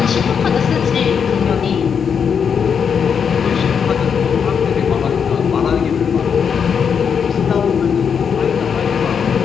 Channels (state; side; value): quieter; right; 6.9 dB